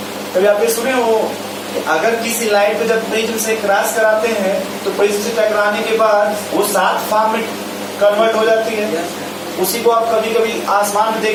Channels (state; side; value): identical; both; correlation 1.00